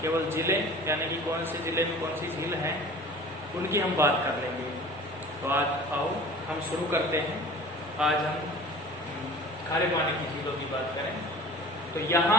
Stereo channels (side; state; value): both; normal; correlation 0.42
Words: केवल झीलें यानी कि कौन से जिले में कौन सी झील है उनकी हम बात कर लेंगे। तो आज आओ हम शुरू करते हैं। आज हम खारे पानी की झीलों की बात करें। तो